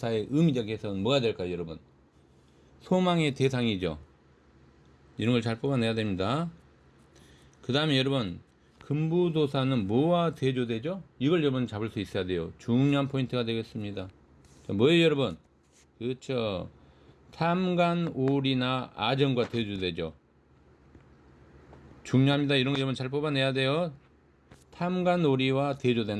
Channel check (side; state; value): both; identical; correlation 1.00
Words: 의미적 해석은 뭐가 될까요, 여러분? 소망의 대상이죠. 이런 걸 잘 뽑아내야 됩니다. 그 다음에 여러분, 금부도사는 뭐와 대조되죠? 이걸 여러분 잡을 수 있어야 돼요. 중요한 포인트가 되겠습니다. 자, 뭐예요, 여러분? 그렇죠. 탐관오리나 아정과 대조되죠. 중요합니다. 이런 거 여러분 잘 뽑아내야 돼요. 탐관오리와